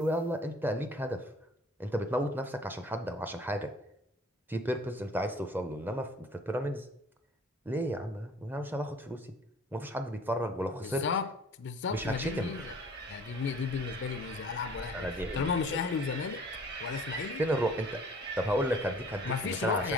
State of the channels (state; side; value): normal; both; correlation 0.51